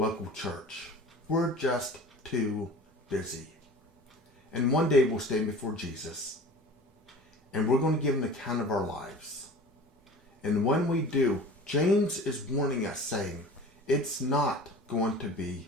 church. We're just too busy. And one day we'll stand before Jesus, and we're going to give an account of our lives. And when we do, James is warning us, saying, it's not going to be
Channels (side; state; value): both; normal; correlation 0.40